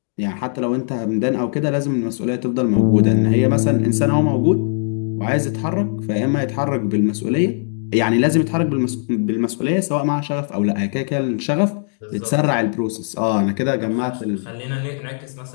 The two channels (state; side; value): silent; right; digital silence